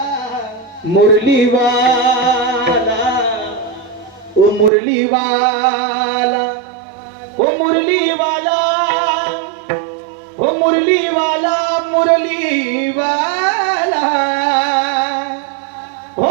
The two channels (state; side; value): drops out; left; at 4.7 s